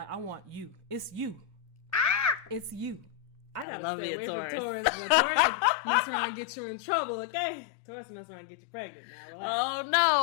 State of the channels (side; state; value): right; drops out; at 3.7 s